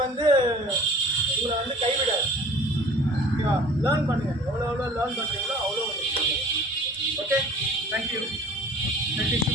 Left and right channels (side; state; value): both; normal; correlation 0.47